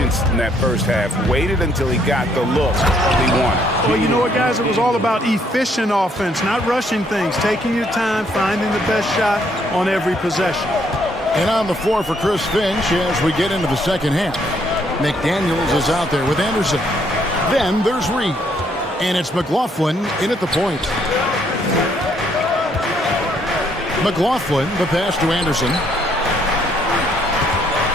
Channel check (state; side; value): normal; both; correlation 0.69